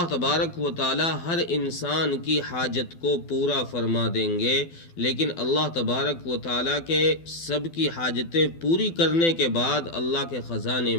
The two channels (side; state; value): right; late; 12 ms